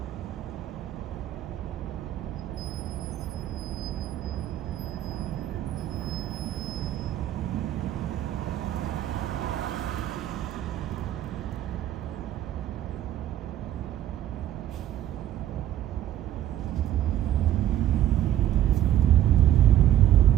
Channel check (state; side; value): quieter; left; 12.0 dB